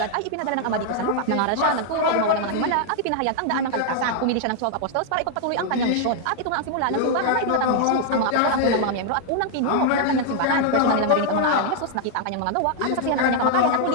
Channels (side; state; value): both; different; correlation -0.01